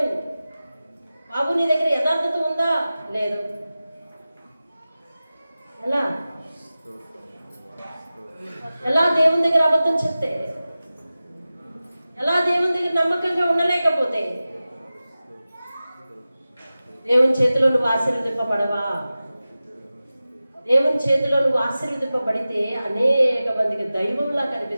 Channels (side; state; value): both; inverted; correlation -0.95